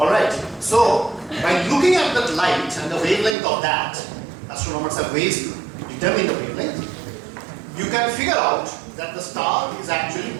so by looking at that light and the wavelength of that, astronomers have ways to determine the wavelength, you can figure out that the star is actually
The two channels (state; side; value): drops out; left; at 3.4 s